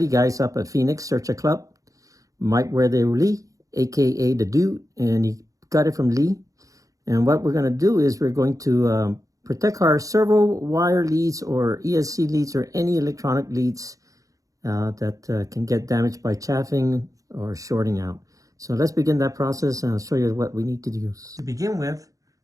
guys up at Phoenix Searcher Club. Mike Where They Lee, aka the Dude, and he got it from Lee. And what we're going to do is we're going to protect our servo wire leads or ESC leads or any electronic leads that can get damaged by chaffing or shorting out. So let's begin that process, and I'll show you what we need to do. To begin with,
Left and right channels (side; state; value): left; late; 0.16 ms